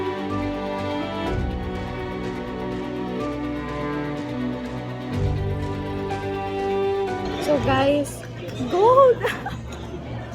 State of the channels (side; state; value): both; identical; correlation 1.00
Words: So guys, gold!